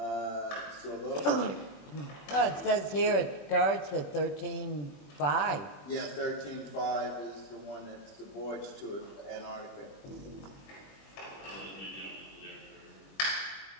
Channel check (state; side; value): late; right; 21 ms